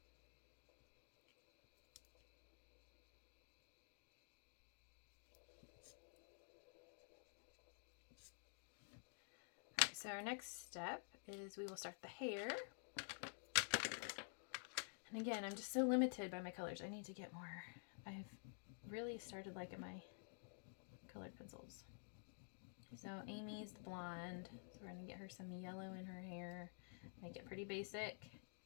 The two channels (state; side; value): silent; right; digital silence